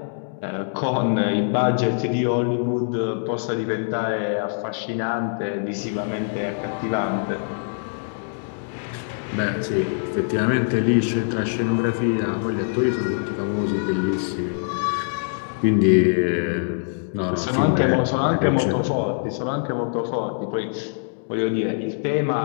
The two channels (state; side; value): silent; right; digital silence